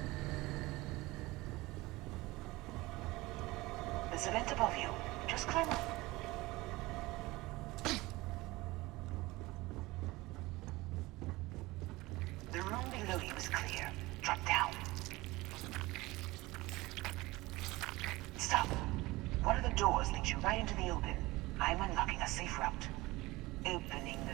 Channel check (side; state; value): left; quieter; 20.6 dB